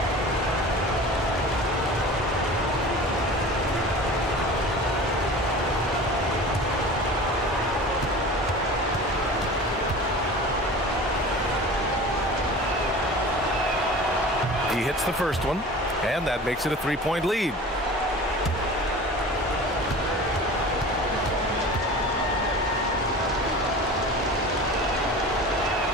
He hits the first one, and that makes it a 3-point lead.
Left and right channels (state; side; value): normal; both; correlation 0.37